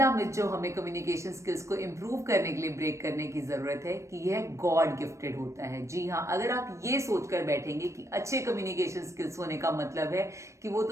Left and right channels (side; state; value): left; late; 0.14 ms